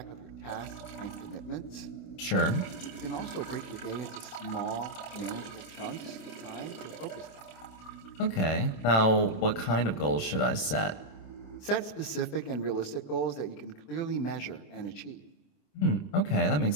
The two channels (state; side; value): late; right; 27 ms